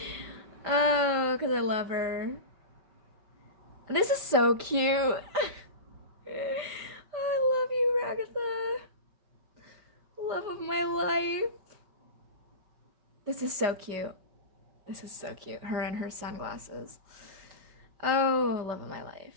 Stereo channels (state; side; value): late; left; 5.0 ms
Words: Oh, because I love her. This is so cute. I love you, Ragatha. Love of my life. This is so cute. This is so cute. Her and her sunglasses. Oh, love of my